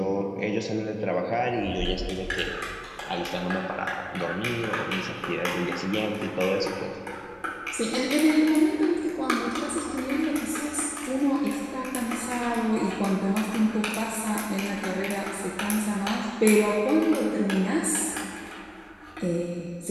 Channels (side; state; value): both; identical; correlation 1.00